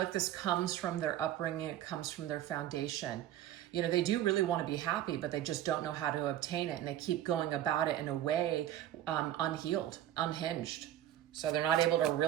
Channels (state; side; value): quieter; left; 12.3 dB